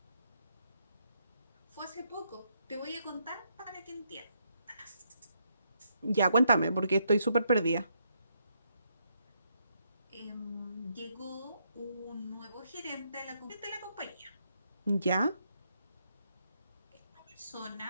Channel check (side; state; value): both; inverted; correlation -0.76